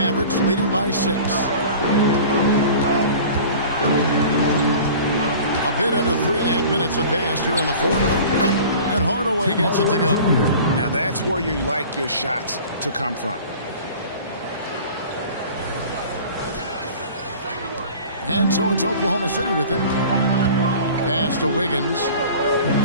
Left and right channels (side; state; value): both; inverted; correlation -0.42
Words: leading by 6. A bit under 3.5 minutes have passed here in the fourth. And Hardaway gets it to go. Now that's where you like your shots to come from. And so it's Oklahoma City with it. Pass to Wiggins.